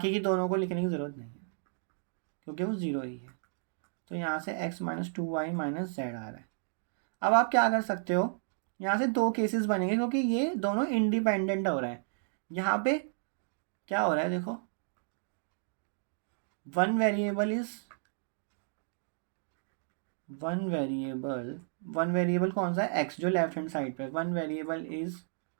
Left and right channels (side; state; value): left; silent; digital silence